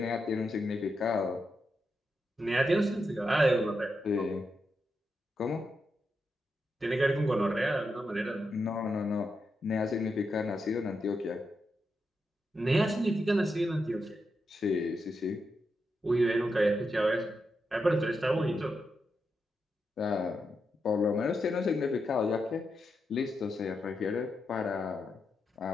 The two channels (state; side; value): normal; both; correlation 0.85